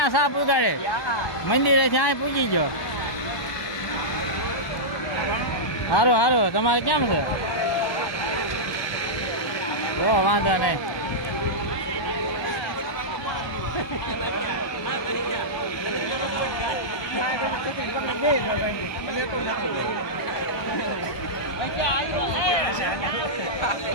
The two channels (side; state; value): right; late; 1.2 ms